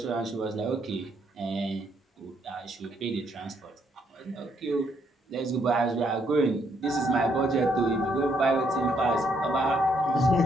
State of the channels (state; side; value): normal; both; correlation 0.72